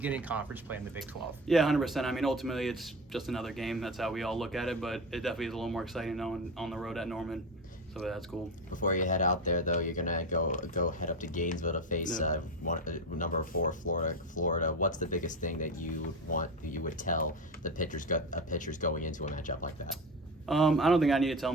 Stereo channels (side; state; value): both; normal; correlation 0.22